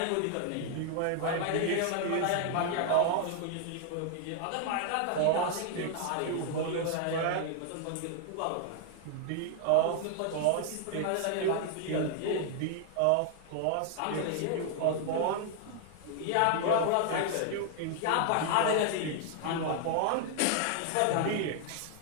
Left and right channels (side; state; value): both; different; correlation 0.00